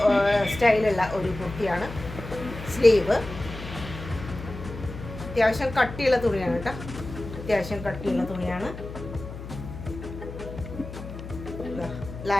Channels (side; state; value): left; noise; hum, 11 dB below the sound